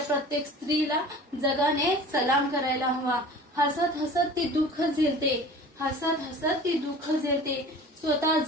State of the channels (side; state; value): both; normal; correlation 0.41